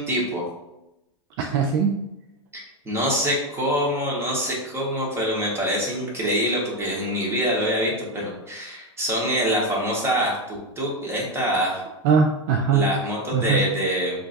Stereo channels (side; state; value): both; normal; correlation 0.12